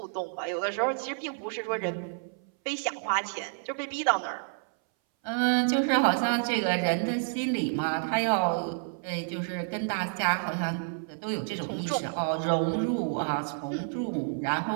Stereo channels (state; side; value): silent; left; 58 dB below the other